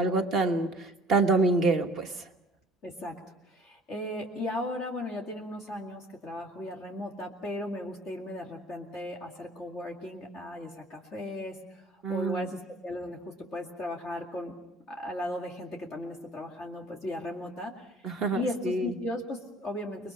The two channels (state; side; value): normal; both; correlation 0.52